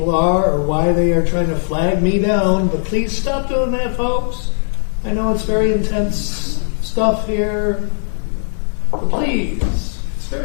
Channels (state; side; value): silent; right; digital silence